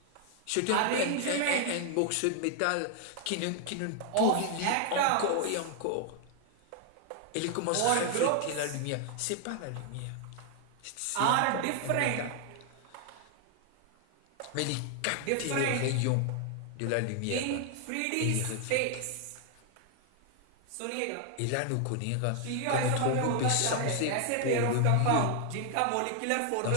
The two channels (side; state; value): both; different; correlation 0.00